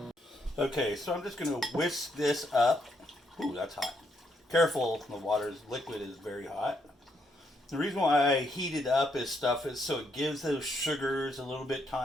Okay, so I'm just going to whisk this up. Ooh, that's hot. Careful, the liquid is very hot. The reason why I heat it up is so it gives those sugars a little bit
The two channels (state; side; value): normal; both; correlation 0.75